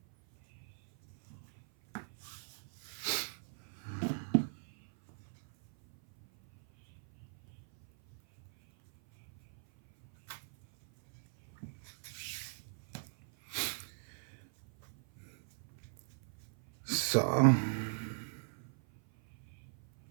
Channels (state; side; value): silent; left; 52 dB below the other